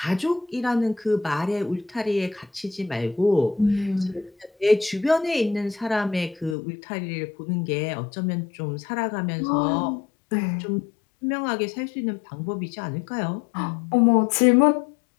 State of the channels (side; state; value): right; drops out; at 6.6 s